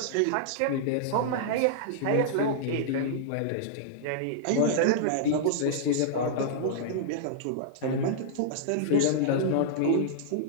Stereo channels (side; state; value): both; different; correlation -0.02